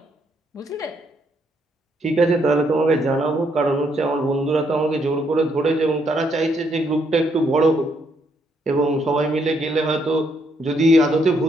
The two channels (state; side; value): normal; both; correlation 0.73